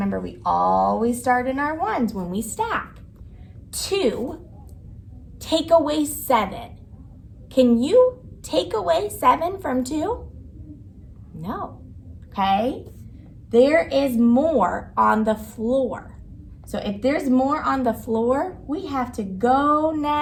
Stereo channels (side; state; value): both; identical; correlation 1.00